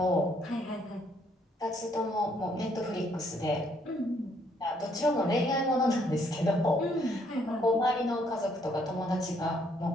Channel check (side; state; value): both; normal; correlation 0.69